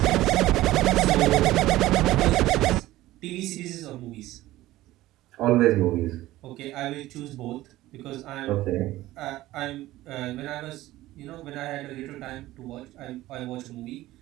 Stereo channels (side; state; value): left; quieter; 16.4 dB